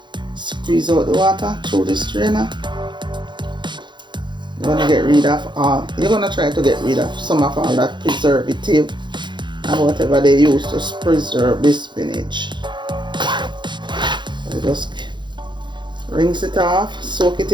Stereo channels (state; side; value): late; left; 0.22 ms